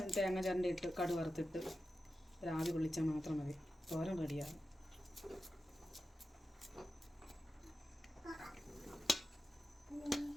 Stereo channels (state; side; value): normal; both; correlation 0.92